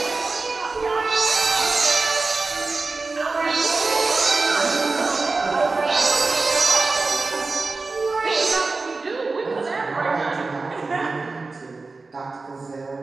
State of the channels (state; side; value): quieter; left; 3.8 dB